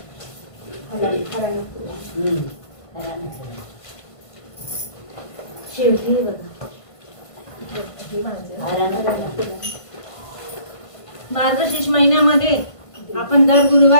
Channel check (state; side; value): late; right; 1.5 ms